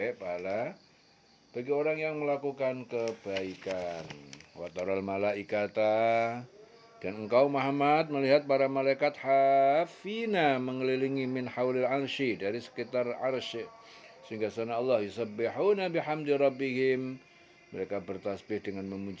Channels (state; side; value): identical; both; correlation 1.00